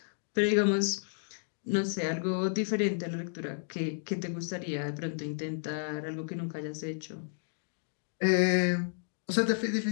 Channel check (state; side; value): silent; right; digital silence